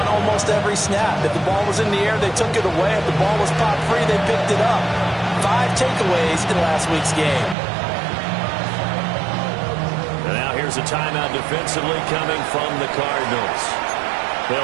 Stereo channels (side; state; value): left; drops out; at 7.6 s